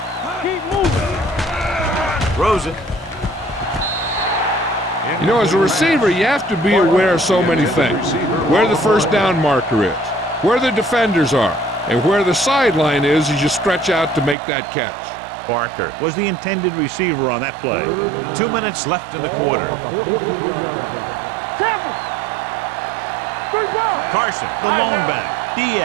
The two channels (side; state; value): left; drops out; at 14.4 s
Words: keep moving. Throws it. You know, as a receiver, you have to be aware of so many things. Where the first down marker is, where the defenders are, and where the sideline is as you stretch out to make that catch. Barker was the intended receiver on that play. 2 minutes left in the quarter. 43-yard line. Carson, the lone back.